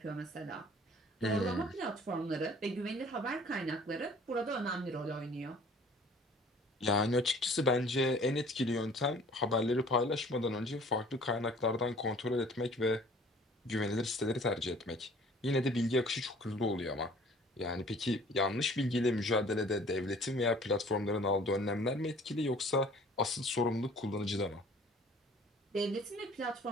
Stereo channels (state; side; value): normal; both; correlation 0.52